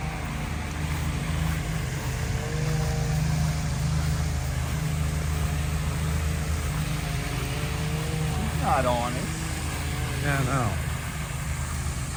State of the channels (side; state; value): both; identical; correlation 1.00